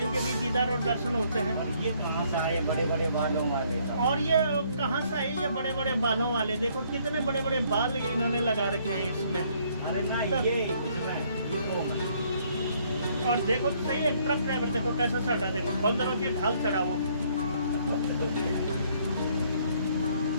के भी दीदार और दर्शन होते हैं। और ये कहाँ से आए बड़े बड़े बालों वाले? और ये कहाँ से आए ये बड़े बड़े बालों वाले? देखो कितने बड़े बड़े बाल इन्होंने लगा रखे हैं इसमें। अरे ना, ये इतना है। और देखो तो सही, एक ट्रक ड्राइवर देखो कैसा चढ़ा, देखो बंदरों की ढाल चढ़ा वो।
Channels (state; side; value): inverted; both; correlation -0.65